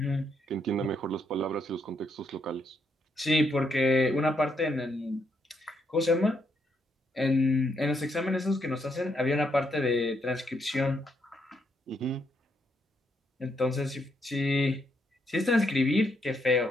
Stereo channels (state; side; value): normal; both; correlation 0.76